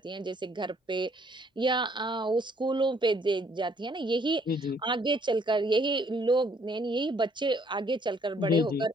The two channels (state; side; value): normal; both; correlation 0.65